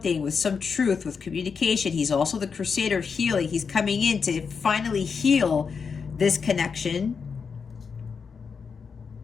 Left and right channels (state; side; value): quieter; right; 5.7 dB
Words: with some truth, with communication. He's also the crusader of healing. He's coming in to finally heal this connection.